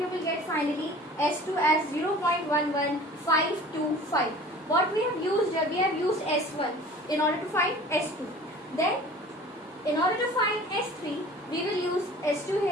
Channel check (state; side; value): normal; both; correlation 0.44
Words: will get finally S2 as 0.11525. What we have used here, we have used S1 in order to find S2. Then, in order to find S3, we will use S2